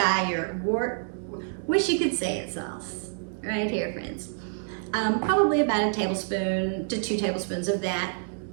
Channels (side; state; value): left; silent; digital silence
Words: Wish you could say it sauce. Right here, friends. Probably about a tablespoon to 2 tablespoons of that.